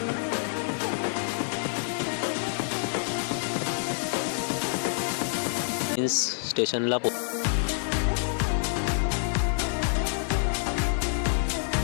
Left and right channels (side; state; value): right; silent; 60 dB below the other